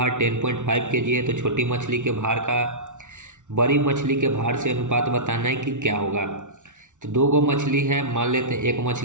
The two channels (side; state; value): left; late; 0.86 ms